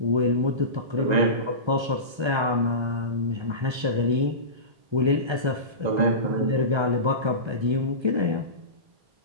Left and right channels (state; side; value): late; left; 1.3 ms